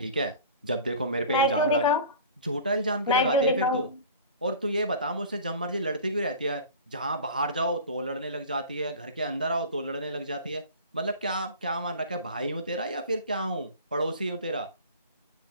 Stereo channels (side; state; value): both; inverted; correlation -0.40